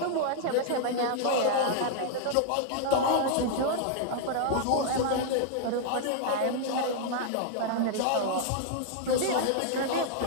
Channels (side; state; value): both; different; correlation -0.01